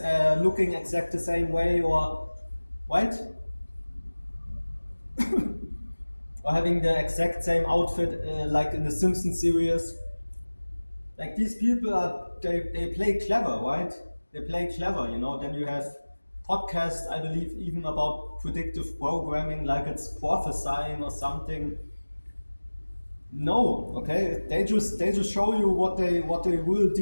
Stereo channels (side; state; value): both; inverted; correlation -1.00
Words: looking exact the same way, or right? Or having the exact same outfit like in the Simpsons series. Like these people they play clever, right? They play clever, you know. Then you have podcasts, I believe, even about predictive programming, like it's prophesying or something. No, okay. They just show you what they will